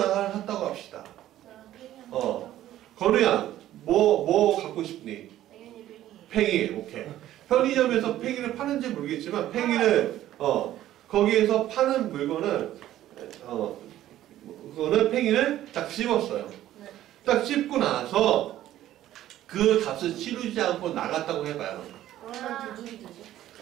하나 샀다고 합시다. 건우야, 뭐 갖고 싶니? 팽이, 오케이. 편의점에서 팽이를 파는지 모르겠지만, 팽이를, 거기에서 파는 물건은, 그거는 팽이를 딱 씹었어요. 딱 씹고 나서 그 값을 치르지 않고 나갔다고 해봐요.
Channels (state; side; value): quieter; left; 13.3 dB